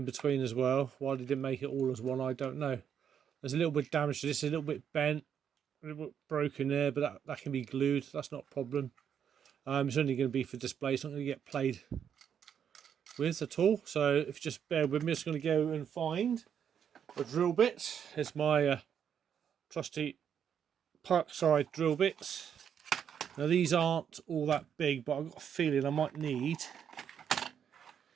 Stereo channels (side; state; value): left; quieter; 8.3 dB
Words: between as well. Why they didn't make it all as one, I don't know. There's a little bit of damage to this, a little bit bent, a little bit broken there, but that can be glued, that's not a problem. It's only going to be for display, it's not going to get played with at all. So if you just bear with me, I'm just going to go and find a drill bit. Here's my trusty Parkside drill bits. Now these aren't all that big, but I've got a feeling I might need...